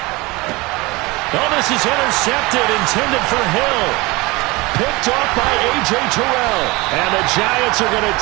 Oh, this is intercepted, intended for Hill. Picked off by A.J. Terrell. And the Giants are going to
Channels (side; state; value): left; quieter; 23.3 dB